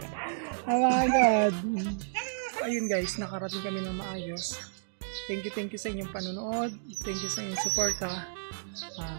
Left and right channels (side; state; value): left; silent; digital silence